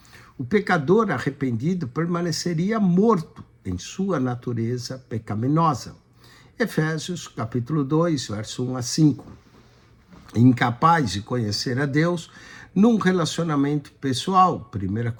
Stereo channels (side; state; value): both; identical; correlation 1.00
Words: o pecador arrependido permaneceria morto em sua natureza pecaminosa. Efésios capítulo 2, verso 1 a 5. Incapaz de conhecer a Deus num relacionamento pessoal. 1